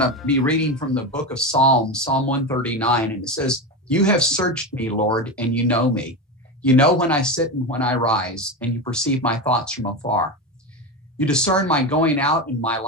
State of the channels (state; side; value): normal; both; correlation 0.19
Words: be reading from the book of Psalms, Psalm 139. And it says, "You have searched me, Lord, and you know me. You know when I sit and when I rise, and you perceive my thoughts from afar. You discern my going out and my